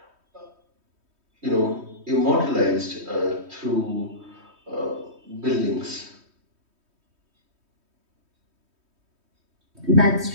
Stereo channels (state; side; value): late; left; 3.2 ms